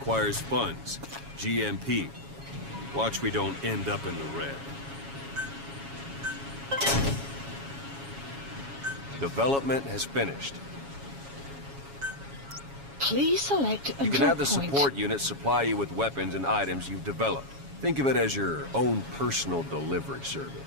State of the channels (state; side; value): late; left; 7.2 ms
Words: funds. GMP. Watch we don't end up in the red. Development has finished. Please select a You can drop have the point. support unit supply you with weapons and items you've developed. Think of it as your own personal delivery